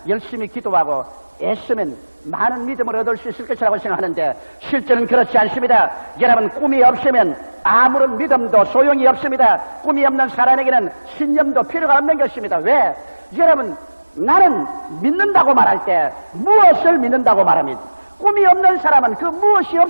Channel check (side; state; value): both; inverted; correlation -1.00